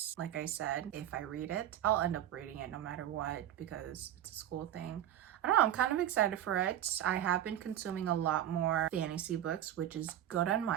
Like I said, if I read it, I'll end up reading it no matter what because it's a school thing. I don't know, I'm kind of excited for it. I have been consuming a lot more fantasy books, which is good on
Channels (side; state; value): left; quieter; 11.5 dB